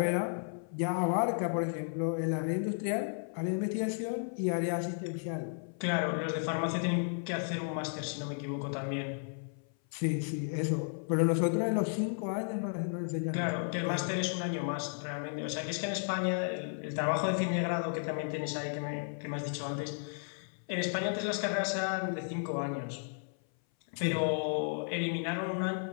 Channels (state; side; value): silent; right; 55 dB below the other